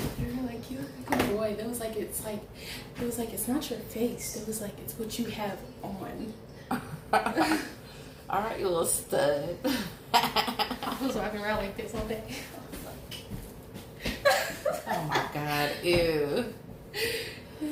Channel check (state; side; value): identical; both; correlation 1.00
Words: They were like, you look like a boy. It was like it's not your face. It was like it's what you have on. All right, you little stud. I was walking around like this all day. Oh my God, ew.